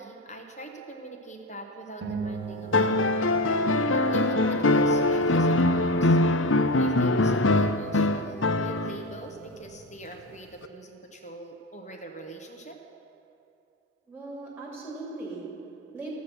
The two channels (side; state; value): both; normal; correlation 0.20